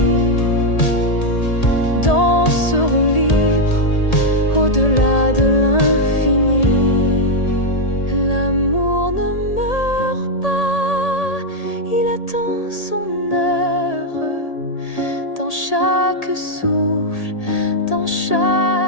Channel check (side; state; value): right; late; 1.8 ms